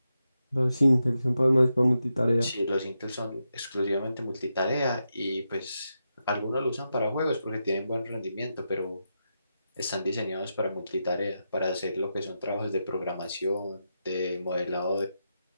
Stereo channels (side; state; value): both; inverted; correlation -0.87